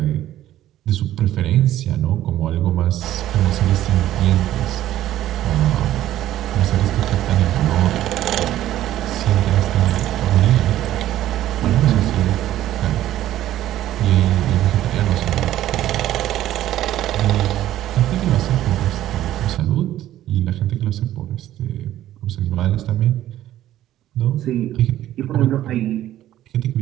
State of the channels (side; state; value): left; quieter; 13.2 dB